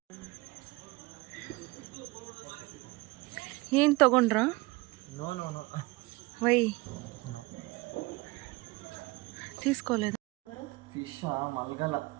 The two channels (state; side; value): quieter; left; 23.2 dB